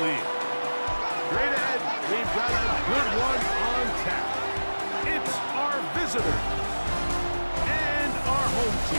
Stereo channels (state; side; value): inverted; both; correlation -1.00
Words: League. Straight ahead, we've got a good one on tap. It's our visitors and our home